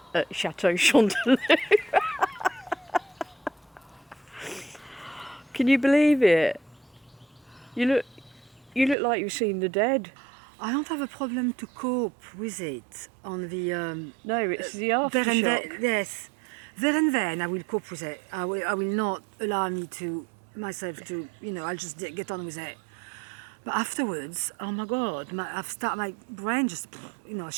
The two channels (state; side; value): drops out; left; at 9.0 s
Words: at Chateau Chanteloup. Can you believe it? You look like you've seen the dead. I don't have a problem to cope with it on the No, it's the aftershock. Yes. There and then I will cope with it. I will not allow myself to, I'll just get on with it. But afterwards, oh my God, my brain just,